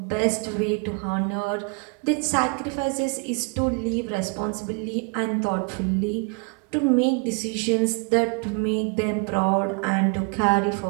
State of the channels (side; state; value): left; quieter; 35.4 dB